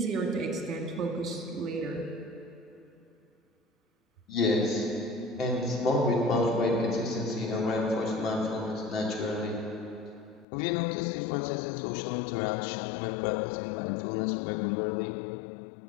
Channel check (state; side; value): drops out; right; at 10.5 s